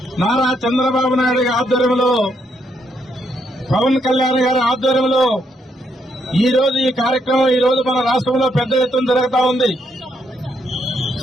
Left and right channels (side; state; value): both; normal; correlation 0.75